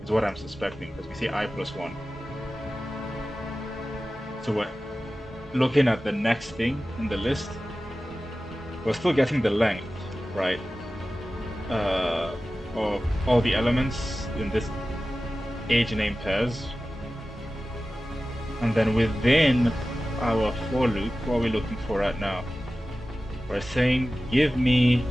is what I'm suspecting, because we say I plus 1. So we're looking at the next thing in the list. We're still getting the length, right? Of all the elements in this age name pairs. And then within our for loop, what are we looking for right now? We're saying, give me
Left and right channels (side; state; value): both; normal; correlation 0.95